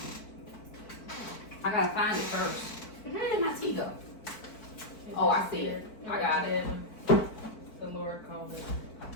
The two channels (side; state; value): right; late; 4.5 ms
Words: I gotta find it first. Where did my tea go? Oh, I see it. I got it. The Lord called it.